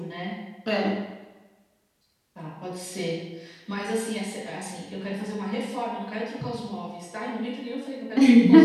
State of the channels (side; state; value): both; identical; correlation 1.00